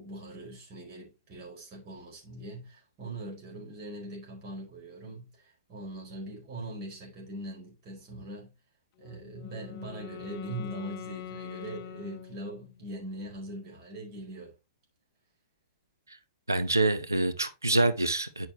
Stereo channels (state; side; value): inverted; both; correlation -0.64